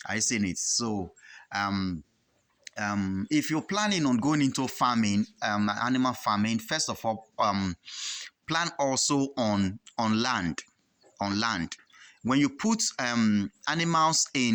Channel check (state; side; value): identical; both; correlation 1.00